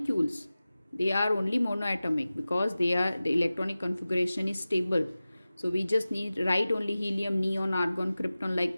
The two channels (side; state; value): both; inverted; correlation -0.96